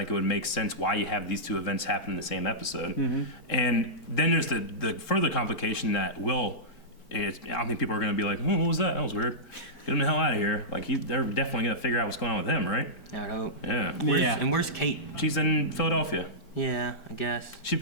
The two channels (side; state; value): right; late; 4.4 ms